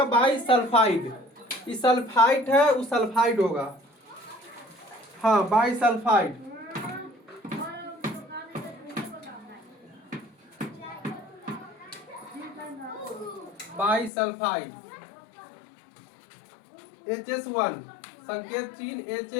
बाई सल्फाइड। ये सल्फाइड है, वो सल्फाइड होगा। हाँ, by sulphide. By sulphide HS1, संकेत चिन्ह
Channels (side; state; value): right; drops out; at 14.1 s